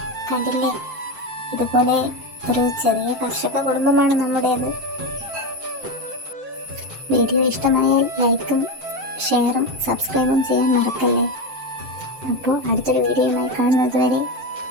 കണ്ടില്ലേ, ഇതുപോലെ ഒരു ചെറിയ കർഷക കുടുംബമാണ് നമ്മുടേത്. വീഡിയോ ഇഷ്ടമായാൽ ലൈക്കും ഷെയറും സബ്സ്ക്രൈബും ചെയ്യാൻ മറക്കല്ലേ. അപ്പോൾ അടുത്തൊരു വീഡിയോയുമായി കാണുന്നത് വരെ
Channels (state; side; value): late; left; 7.7 ms